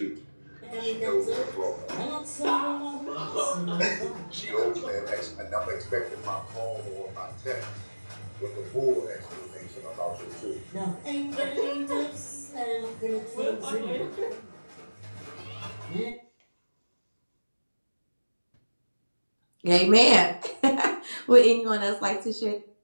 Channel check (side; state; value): both; inverted; correlation -1.00